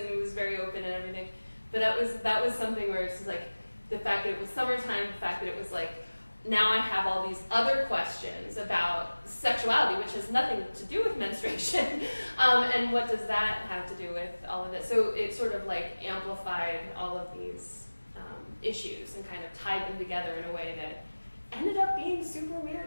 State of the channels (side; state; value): both; inverted; correlation -1.00